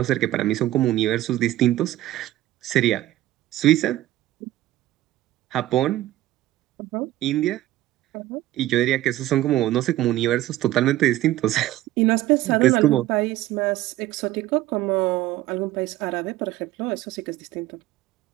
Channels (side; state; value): left; quieter; 15.2 dB